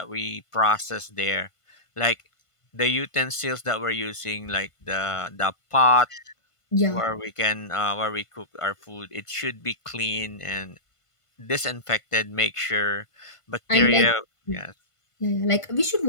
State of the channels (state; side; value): late; right; 1.5 ms